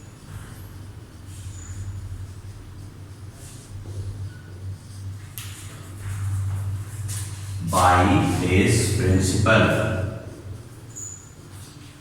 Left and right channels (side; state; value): both; identical; correlation 1.00